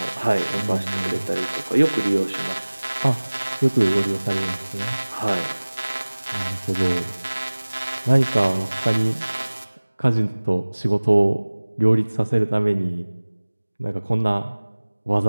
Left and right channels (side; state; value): both; inverted; correlation -1.00